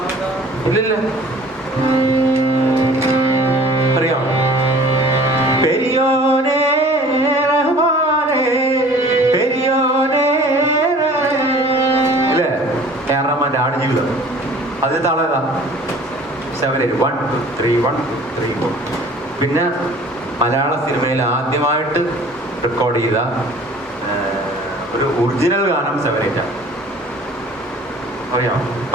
ഇല്ലില്ല, അറിയാം? പെരിയോനെ റഹ്മാനെ പെരിയോനെ ഇല്ലേ? റഹ്മാന്റെ ആടുജീവിതം. അതിന് താളം ഏതാ? 7/8 1 2 3 1 2 3 4. പിന്നെ മലയാള സിനിമയിൽ ആദ്യമായിട്ട് റെക്കോർഡ് ചെയ്ത ഒരു ഒറിജിനൽ ഗാനം 7/8 അറിയാം?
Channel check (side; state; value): both; normal; correlation 0.48